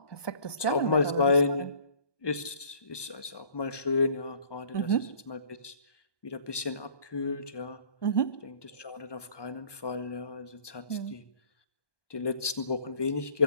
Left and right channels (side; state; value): right; late; 1.2 ms